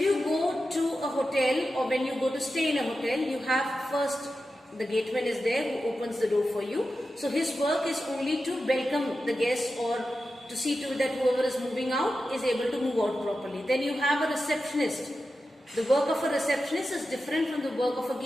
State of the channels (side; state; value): both; normal; correlation 0.91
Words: go to a hotel or when you go to stay in a hotel, you have first the gateman is there who opens the door for you. So his work is only to welcome the guests or to see to that whoever is moving out is able to move out properly. Then you have a receptionist. The work of a receptionist is different from the work of a